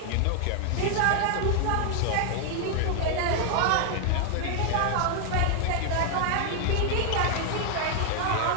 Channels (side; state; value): both; different; correlation 0.00